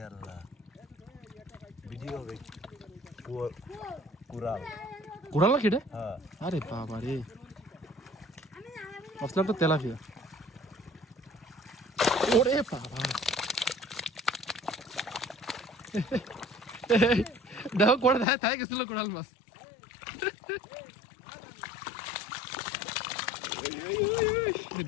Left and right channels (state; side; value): drops out; right; at 18.2 s